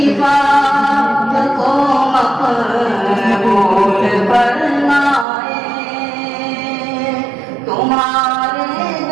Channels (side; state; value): left; drops out; at 5.2 s